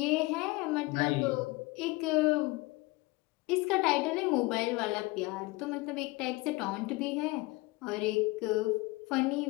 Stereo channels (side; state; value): right; quieter; 22.6 dB